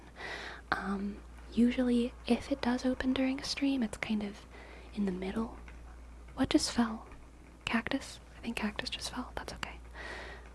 Usually, if it does open during a stream, it's kind of in the middle. What just fell? Cactus? I think cactus just fell. That's okay.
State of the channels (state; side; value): identical; both; correlation 1.00